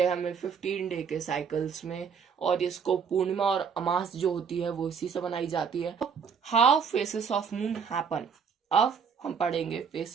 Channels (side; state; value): left; quieter; 6.5 dB